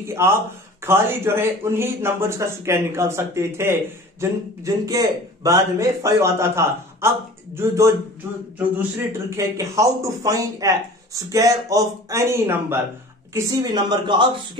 कि आप खाली जो है उन्हीं नंबर्स का स्क्वायर निकाल सकते थे जिनके बाद में 5 आता था। अब जो दूसरी ट्रिक है कि how to find a square of any number, किसी भी नंबर का आप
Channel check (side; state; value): both; normal; correlation 0.42